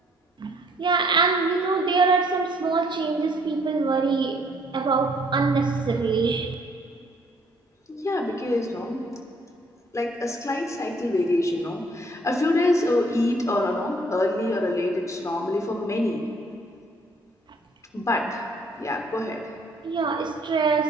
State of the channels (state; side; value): normal; both; correlation 0.63